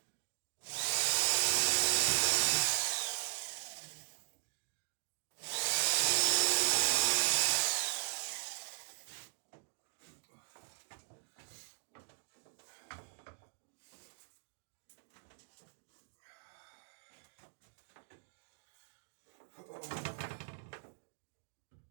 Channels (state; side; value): silent; left; digital silence